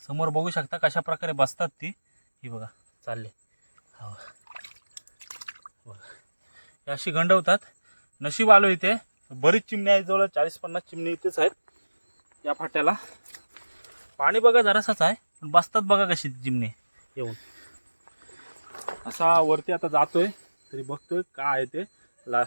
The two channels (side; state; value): both; inverted; correlation -1.00